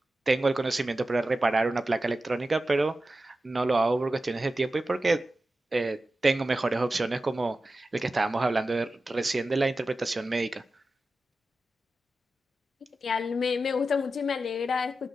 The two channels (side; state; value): both; normal; correlation 0.93